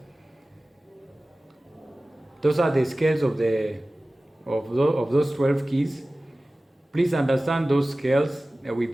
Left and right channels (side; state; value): both; normal; correlation 0.97